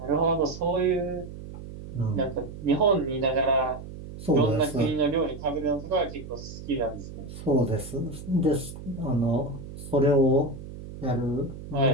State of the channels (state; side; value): noise; right; hum, 12 dB below the sound